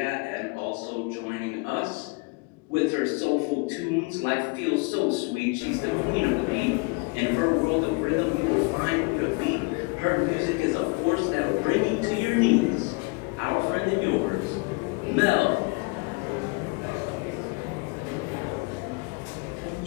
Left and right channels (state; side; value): quieter; right; 29.4 dB